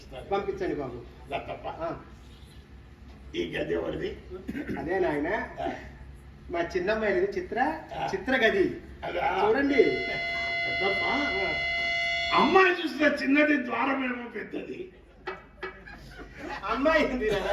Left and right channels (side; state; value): both; identical; correlation 1.00